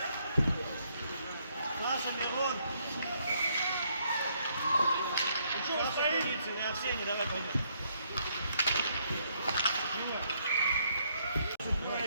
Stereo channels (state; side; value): inverted; both; correlation -0.72